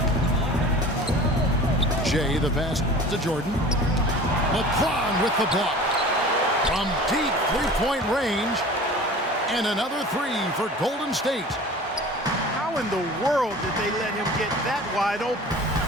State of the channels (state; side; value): normal; both; correlation 0.41